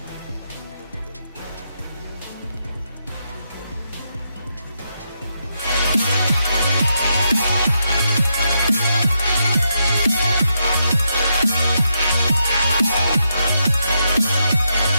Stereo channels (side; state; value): both; inverted; correlation -0.82